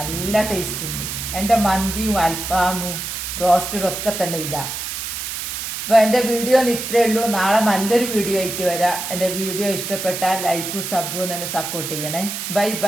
ടേസ്റ്റ് ഉണ്ട്. എന്റെ മന്തിയും അൽഫാമും റോസ്റ്റഡും ഒക്കെ തന്നെ ഇതാ. അപ്പൊ എന്റെ വീഡിയോ ഇത്രേ ഉള്ളൂ. നാളെ നല്ലൊരു വീഡിയോ ആയിട്ട് വരാം. എന്റെ വീഡിയോ ഇഷ്ടപ്പെട്ടാൽ ലൈക്കും സബും തന്നെ സപ്പോർട്ട് ചെയ്യണേ. Bye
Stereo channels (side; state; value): right; noise; hiss, 5 dB below the sound